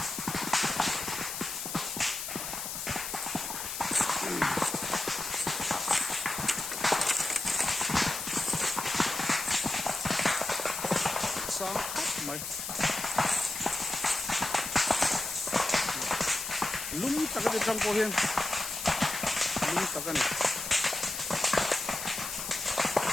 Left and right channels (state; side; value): noise; left; hiss, 5 dB below the sound